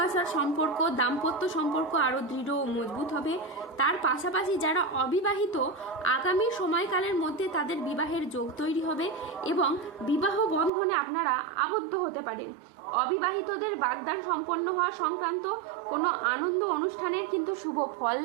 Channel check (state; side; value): drops out; left; at 10.7 s